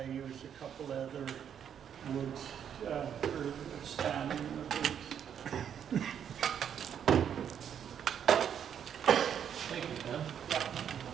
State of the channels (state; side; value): quieter; left; 8.6 dB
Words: use a couple other woods for standing in the birch. Thank you, Ken.